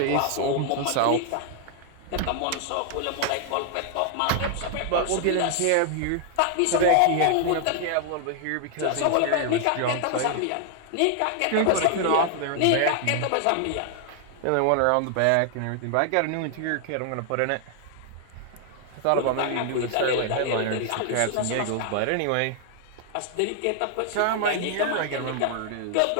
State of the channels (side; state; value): both; different; correlation 0.00